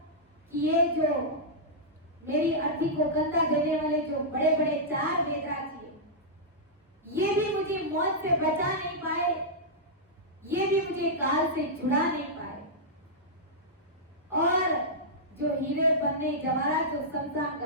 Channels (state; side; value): normal; both; correlation -0.10